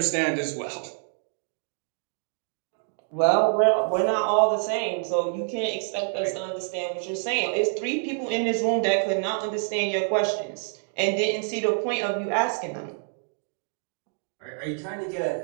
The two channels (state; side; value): silent; left; 60 dB below the other